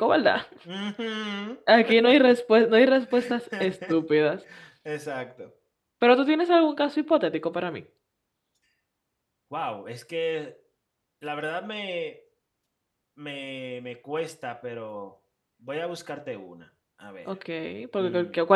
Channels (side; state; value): both; identical; correlation 1.00